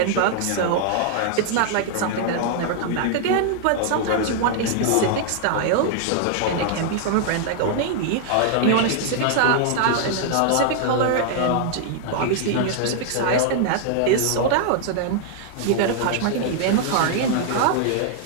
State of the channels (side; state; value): both; different; correlation 0.00